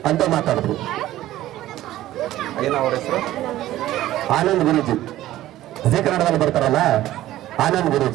ಅಂತ ಮಾತಾಡಿದ್ರು. ಆನಂದ್ ಗುರೂಜಿ, ಜಿ ಕನ್ನಡದಲ್ಲಿ ಬರ್ತಾರಲ್ಲ ಆನಂದ್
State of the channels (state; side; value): quieter; left; 14.6 dB